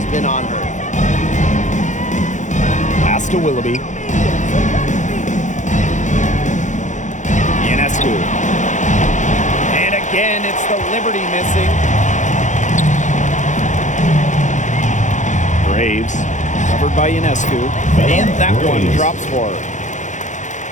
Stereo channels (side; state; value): right; late; 0.35 ms